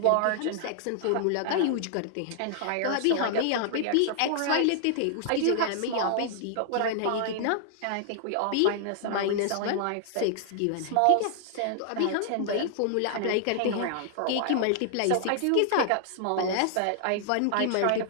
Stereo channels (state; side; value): different; both; correlation -0.01